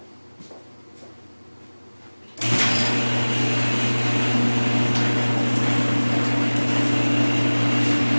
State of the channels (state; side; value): inverted; both; correlation -1.00